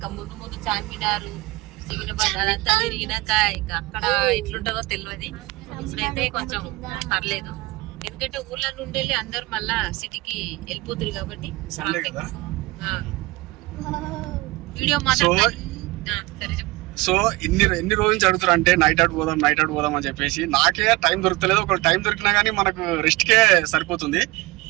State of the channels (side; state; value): left; quieter; 21.9 dB